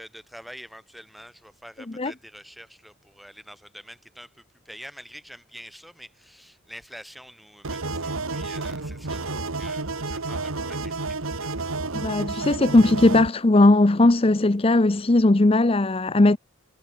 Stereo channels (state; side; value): normal; both; correlation 0.69